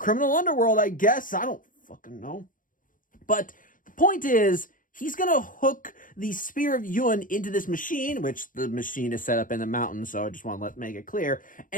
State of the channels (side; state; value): right; late; 0.39 ms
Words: underworld. I guess I don't fucking know. But the point is, he's gonna hook the Spear of Yun into this machine, which the machine is set up in the mountain, so I just want to make it clear.